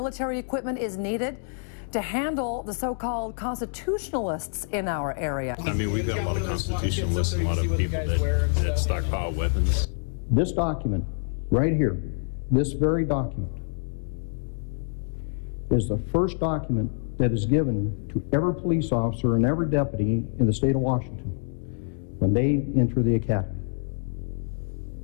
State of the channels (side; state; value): right; silent; digital silence